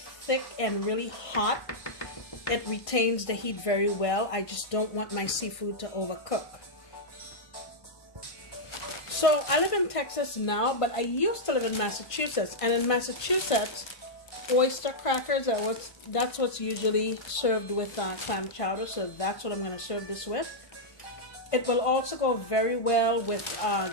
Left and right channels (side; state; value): right; late; 1.5 ms